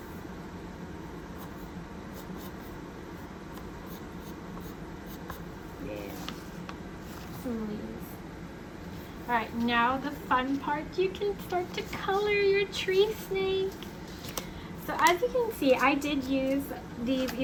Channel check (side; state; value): both; identical; correlation 1.00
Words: Alright, now the fun part, you can start to color your tree snake. So as you can see, I did use these